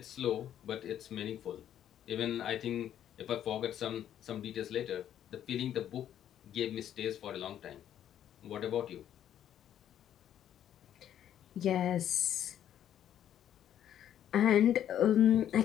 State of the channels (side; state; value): right; quieter; 10.5 dB